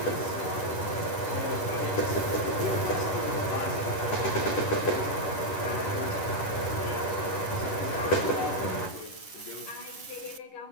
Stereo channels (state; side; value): late; right; 10 ms